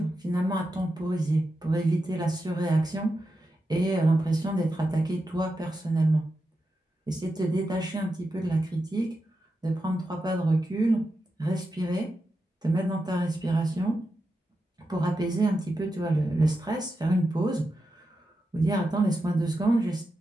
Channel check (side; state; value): both; normal; correlation 0.88